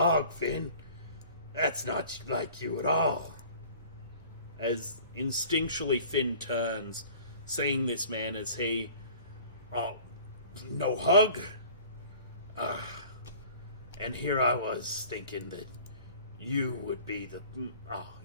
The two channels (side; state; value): both; inverted; correlation -0.46